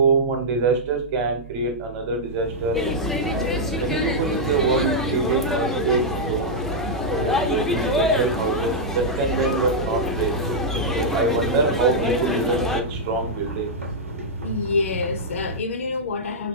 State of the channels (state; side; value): normal; both; correlation -0.07